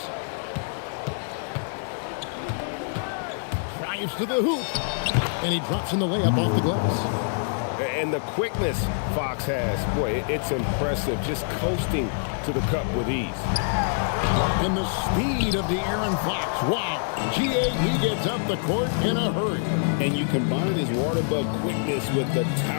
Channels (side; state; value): right; silent; digital silence